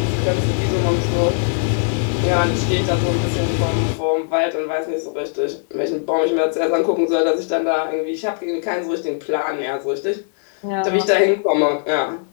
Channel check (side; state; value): right; silent; digital silence